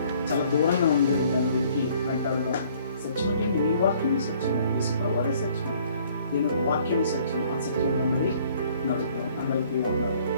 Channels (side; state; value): both; inverted; correlation -0.59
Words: చాలా దూరంగా ఉంది, దాన్ని వెతికి వెంటాడదాం. సత్యం ఏంటి? నీ వాక్యం సత్యం, యేసుప్రభువు వారే సత్యం, దీని వాక్యం సత్యం. ఆ సత్యంలో ఉన్నది నడుపుతాం. అందరికీ ఉన్నారు.